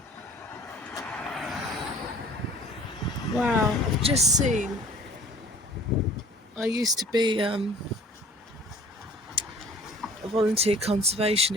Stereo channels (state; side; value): normal; both; correlation 0.49